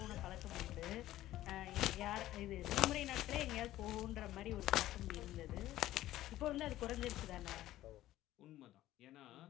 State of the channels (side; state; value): right; quieter; 14.6 dB